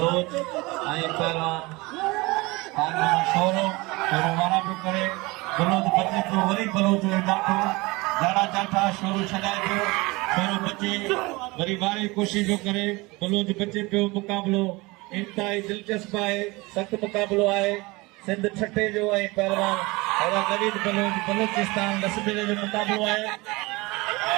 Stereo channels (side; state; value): left; quieter; 23.5 dB